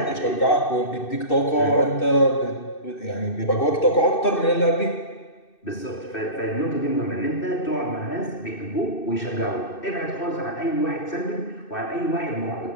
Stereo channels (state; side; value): late; right; 2.6 ms